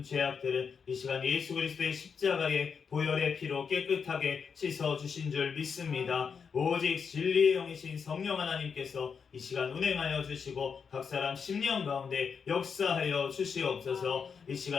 죄악들은 이 시간 예수 그리스도의 십자가의 보혈의 피로 깨끗하게 씻어주신 줄 믿습니다. 오직 진리의 영이신 성령 하나님께서 이 시간 운행하여 주시고 각 사람 심령 가운데 역사하여 주시옵소서. 이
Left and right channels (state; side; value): quieter; right; 6.2 dB